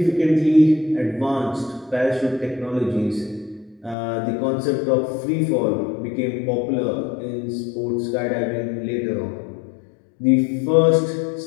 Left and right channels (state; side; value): drops out; right; at 4.0 s